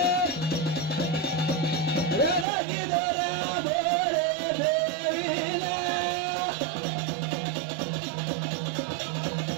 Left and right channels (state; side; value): drops out; left; at 2.5 s